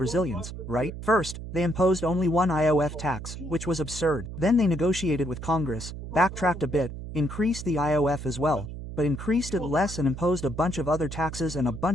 right? First, they imposed only one IOF tax, which was absurd. Then they negotiated with Congress, backtracked a bit, increased the IOF as well, but increased it less and imposed a bunch of other taxes and a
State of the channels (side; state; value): right; noise; hum, 9 dB below the sound